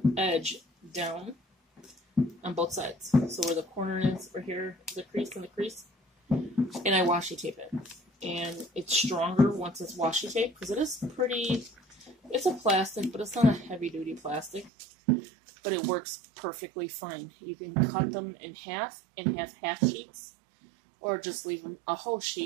edge down on both sides. So where the corner is, right here, the crease and the crease, and I washi tape it. And it's stronger once it's washi tape, because it is pretty, it's a plastic, but it's not a heavy duty plastic, but it works perfectly fine. You can cut them in half and have half sheets, or just leave them a whole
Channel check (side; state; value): left; drops out; at 14.7 s